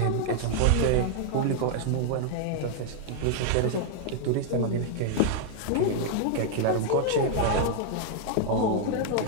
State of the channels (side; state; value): both; different; correlation 0.00